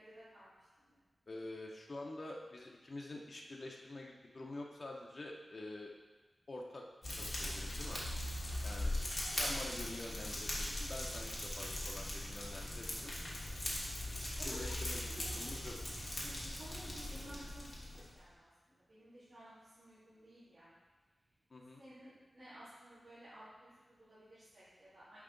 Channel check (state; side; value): normal; both; correlation 0.95